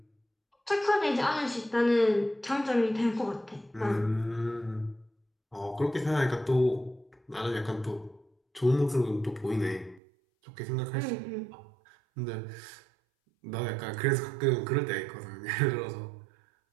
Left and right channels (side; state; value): left; drops out; at 10.0 s